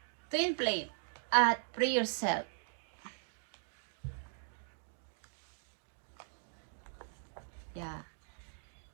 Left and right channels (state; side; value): silent; left; digital silence